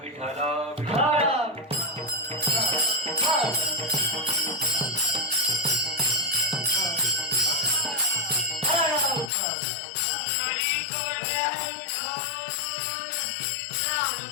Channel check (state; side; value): drops out; right; at 9.3 s